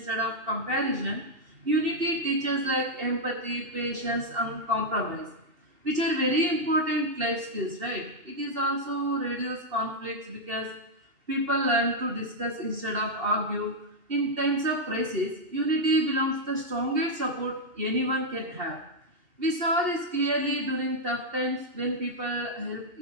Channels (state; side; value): late; left; 2.7 ms